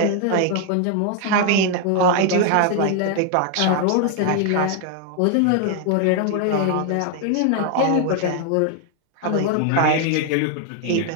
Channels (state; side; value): different; both; correlation 0.00